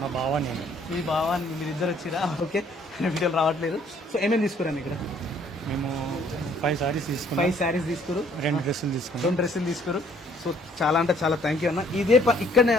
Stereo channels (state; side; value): normal; both; correlation 0.62